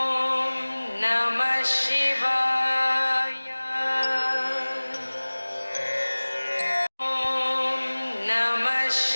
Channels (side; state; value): both; inverted; correlation -1.00